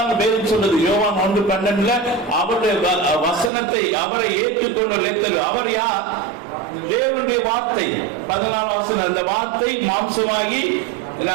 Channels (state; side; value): drops out; left; at 3.5 s